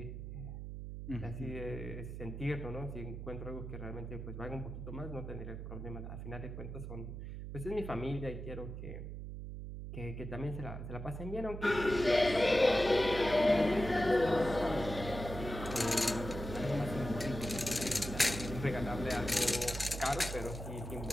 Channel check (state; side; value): noise; right; hum, 8 dB below the sound